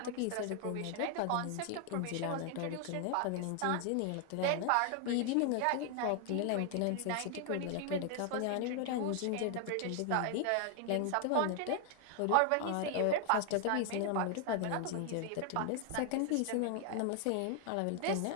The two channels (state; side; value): different; both; correlation 0.00